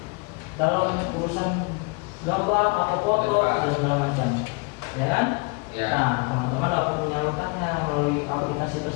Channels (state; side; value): quieter; right; 30.4 dB